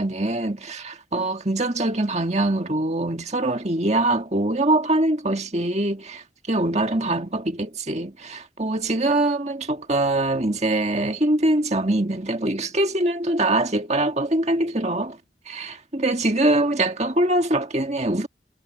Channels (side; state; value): both; normal; correlation 0.46